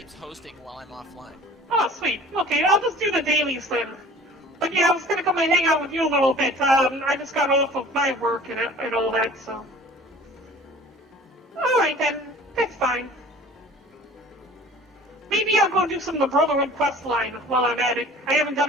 hosting while I'm offline. Oh, sweet. Okay, I'll just do the dailies then. But yeah, I was gonna come and hang out with you a little bit. I just got off of my work and all that, so. Alright then, that's fine. Maybe I'll go do some of the Brotherhood quest line while I'm at it. I haven't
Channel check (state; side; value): normal; both; correlation 0.46